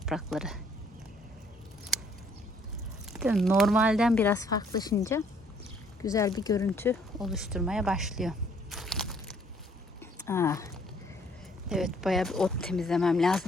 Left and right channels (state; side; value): normal; both; correlation 0.63